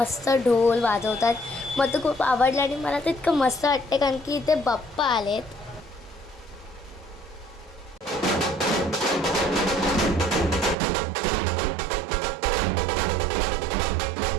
ढोल वाजवतात. मला तर खूप आवडलं आणि मला तर इतकं मस्त वाटते कारण की इथे बाप्पा आलेत.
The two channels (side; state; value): left; drops out; at 10.8 s